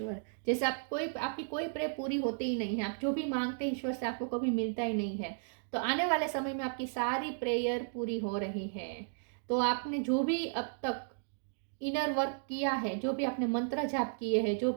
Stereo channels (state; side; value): silent; left; digital silence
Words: जैसे आपकी कोई प्रेयर पूरी होती ही नहीं है, आप जो भी मांगते हैं ईश्वर से आपको कभी मिलता ही नहीं है। तो आने वाले समय में आपकी सारी प्रेयर पूरी हो रही है। तो आपने जो भी अब तक इनर वर्क किया है, जो भी आपने मंत्र जाप किए हैं, जो